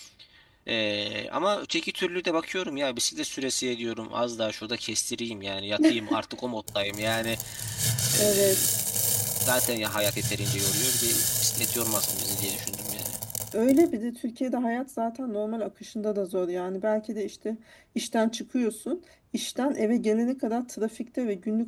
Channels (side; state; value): both; identical; correlation 1.00